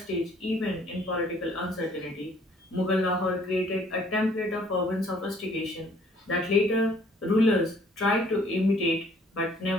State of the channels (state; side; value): normal; both; correlation 0.60